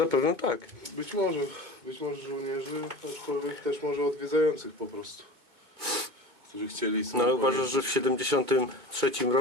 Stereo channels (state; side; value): late; left; 2.3 ms